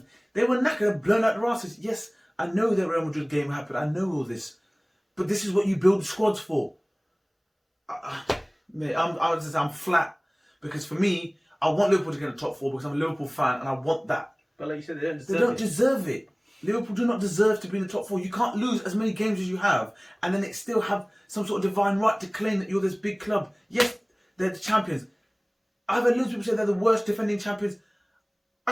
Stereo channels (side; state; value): both; identical; correlation 1.00